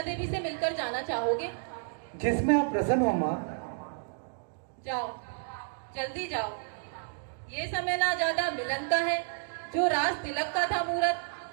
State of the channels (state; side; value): silent; left; digital silence